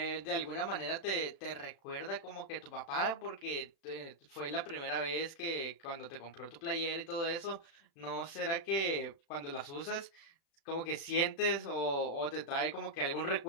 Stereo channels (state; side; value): late; right; 36 ms